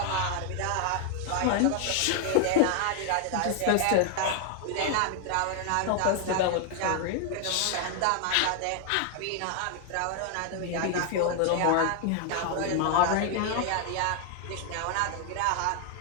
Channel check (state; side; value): different; both; correlation 0.00